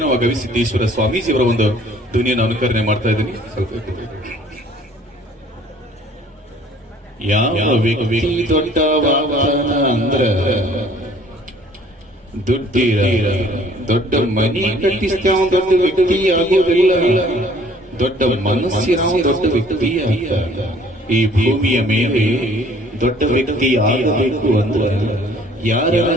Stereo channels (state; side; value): normal; both; correlation 0.55